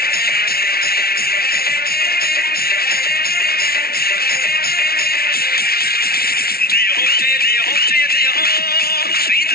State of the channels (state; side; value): late; right; 0.44 ms